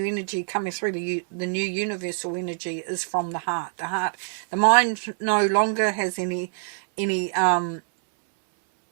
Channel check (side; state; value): left; silent; 62 dB below the other